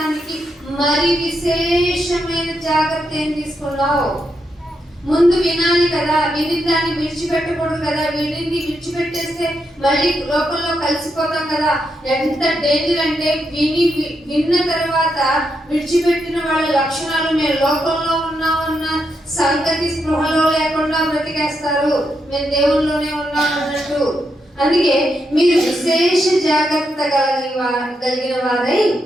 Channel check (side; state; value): both; normal; correlation 0.82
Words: మరి విశేషమైన జాగ్రత్త ఏం తీసుకున్నావు? ముందు వినాలి కదా, విని దాన్ని విడిచిపెట్టకూడదు కదా. వినింది విడిచిపెట్టేస్తే మళ్ళీ లోకంలో కలిసిపోతాం కదా. ఎంత డేంజర్ అంటే విన్న తర్వాత విడిచిపెట్టిన వాళ్ళ లక్షణాలు మేము లోకంలో ఉన్నామన్న సంగతి స్పృహలో లేకుండా బ్రతికేస్తారు. మేము దేవుల్లోనే ఉన్నాం అన్నట్టు. అందుకే మీరు విశేష జాగ్రత్త కలిగిన వారై